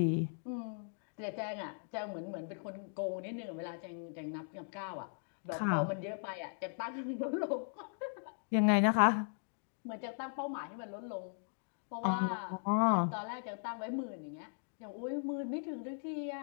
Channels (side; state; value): right; silent; digital silence